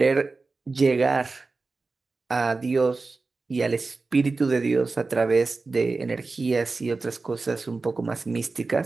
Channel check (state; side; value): quieter; left; 3.8 dB